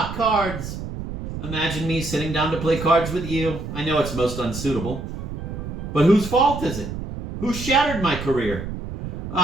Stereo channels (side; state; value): right; noise; rumble, 7 dB below the sound